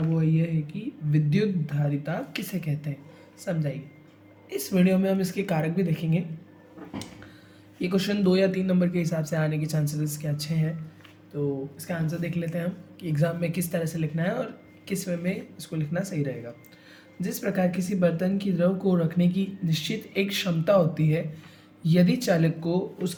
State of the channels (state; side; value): identical; both; correlation 1.00